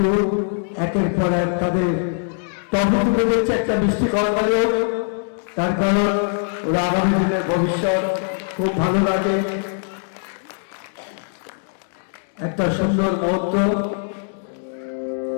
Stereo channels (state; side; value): silent; right; digital silence